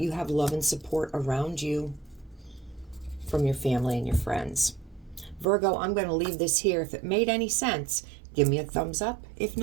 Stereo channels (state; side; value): drops out; left; at 5.5 s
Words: have love and support around you from your family and your friends. Virgo, I'm going to leave this here. If it made any sense, give me a thumbs up. If